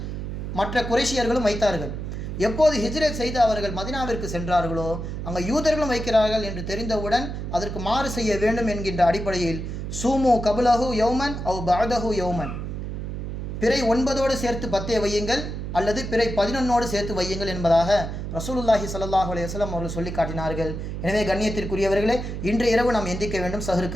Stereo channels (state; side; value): noise; right; hum, 5 dB below the sound